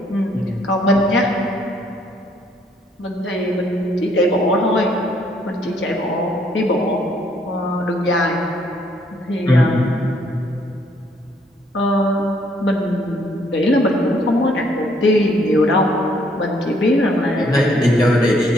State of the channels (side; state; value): both; normal; correlation 0.67